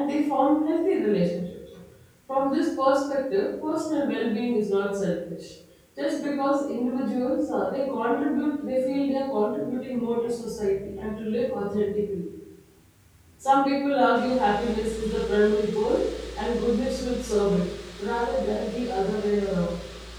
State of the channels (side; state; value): both; identical; correlation 1.00